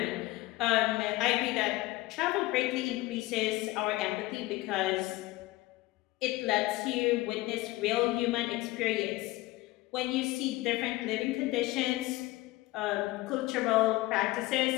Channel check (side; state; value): right; quieter; 19.2 dB